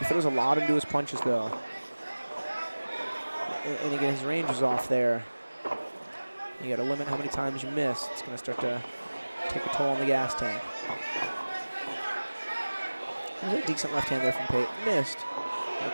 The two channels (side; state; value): both; inverted; correlation -1.00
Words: throws a lot into his punches, though. And again, his range is off there. You got to limit how many times you miss. It's going to start to take a toll on the gas tank. There's a decent left hand there from Pate. Missed.